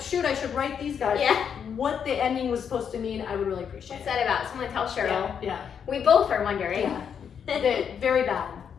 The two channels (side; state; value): right; quieter; 7.6 dB